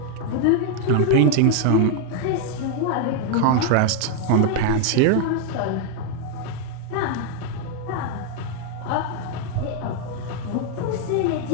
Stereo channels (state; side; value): different; both; correlation 0.00